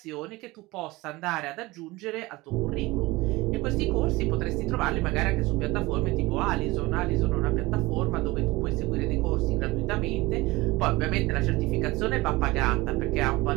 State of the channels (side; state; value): left; quieter; 21.1 dB